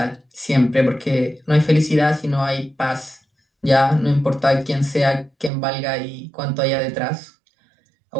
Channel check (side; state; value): left; drops out; at 5.5 s